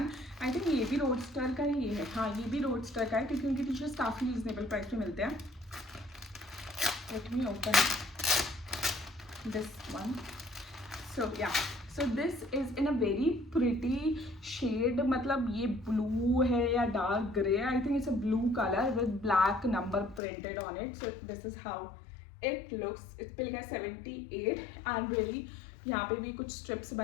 I think ये भी रोडस्टर का ही है. हाँ, ये भी रोडस्टर का है क्योंकि उनकी टी-शर्ट्स काफ़ी रीजनेबल प्राइस पे मिलते हैं. Let me open this one. So yeah, so this is in a very pretty shade. मतलब ये ब्लू है या dark grey. I think it's a blue colour with black number printed on it. So this is how it looks. इस पे लिखा है 78 and really यहाँ पे भी कुछ स्ट्रिप्स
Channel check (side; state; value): right; drops out; at 20.2 s